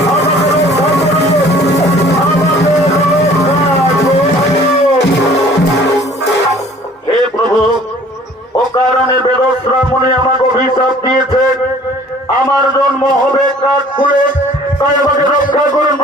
আমাকে রক্ষা করো, আমাকে রক্ষা করো। হে প্রভু, ও কারণে বেদশ্রামণি আমাকে অভিশাপ দিয়েছে, আমার জন্ম হবে কাঠকুলে, তাই আমাকে রক্ষা করুন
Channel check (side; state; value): both; normal; correlation 0.52